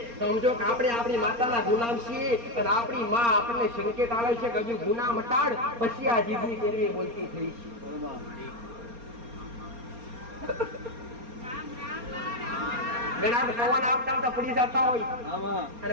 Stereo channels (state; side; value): late; left; 4.3 ms